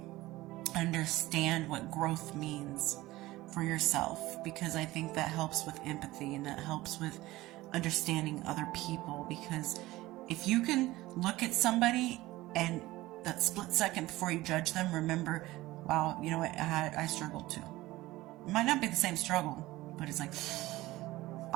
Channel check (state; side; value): quieter; left; 18.1 dB